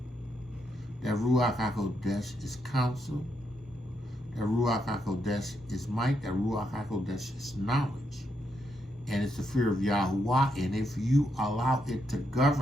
That Ruach HaKodesh is counsel. That Ruach HaKodesh is might. That Ruach HaKodesh is knowledge. And it's the fear of Yahuwah. And if you allow it to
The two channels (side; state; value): both; normal; correlation 0.80